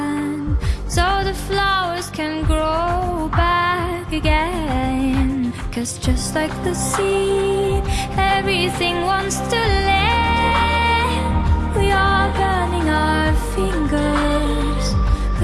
so the flowers can grow back again. 'Cause just like the seed, everything wants to land. We are burning our fingers,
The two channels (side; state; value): both; identical; correlation 1.00